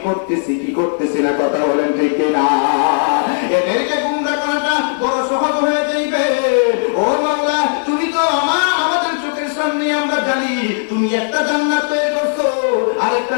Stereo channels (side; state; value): right; silent; 57 dB below the other